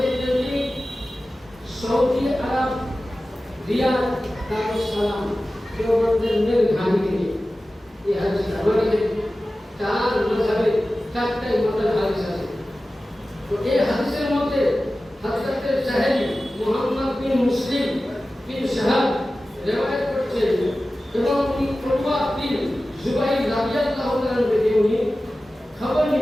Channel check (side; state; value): both; normal; correlation 0.95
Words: যদি সৌদি আরব রিয়াদ দারুস সালাম দেওবন্দের মেল ঘানি থেকে এই হাদিস আমাদের চার মাযহাবে চারটাই মতের হাদিস আছে। তো এই হাদিসের মধ্যে হযরত সাহেবী মুহাম্মদ বিন মুসলিম বিন শাহাব রিওয়ায়াত করছেন এবং উরওয়া বিন জুবাইর রাদিয়াল্লাহু তাআলা থেকে উনি খবর